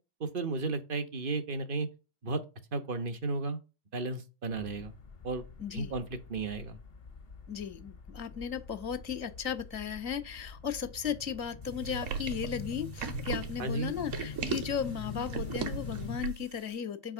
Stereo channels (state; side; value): late; left; 2.5 ms